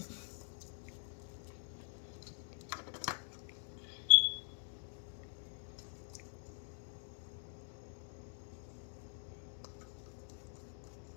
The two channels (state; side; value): silent; right; digital silence